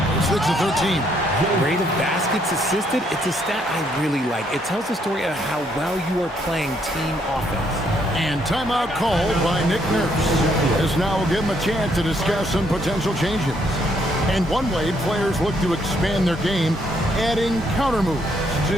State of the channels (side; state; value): both; normal; correlation 0.71